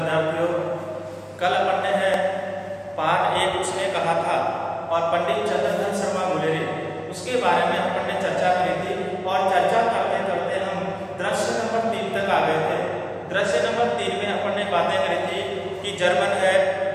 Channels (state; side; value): identical; both; correlation 1.00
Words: कल अपन ने है पाठ 1 उसने कहा था और पंडित चंद्रधर शर्मा गुलेरी उसके बारे में अपन ने चर्चा करी थी और चर्चा करते करते हम दृश्य नंबर 3 तक आ गए थे। दृश्य नंबर 3 में अपन ने बातें करी थी कि जर्मन